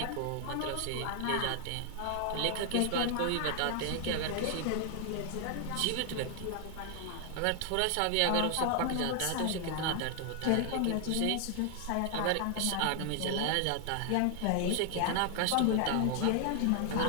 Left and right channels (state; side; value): different; both; correlation 0.00